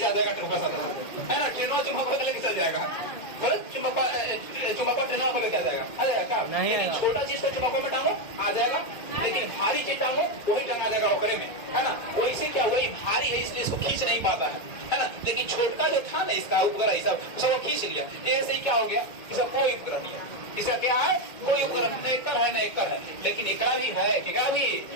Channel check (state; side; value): late; right; 2.1 ms